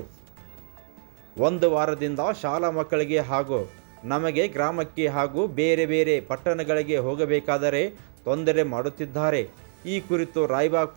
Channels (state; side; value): silent; left; 56 dB below the other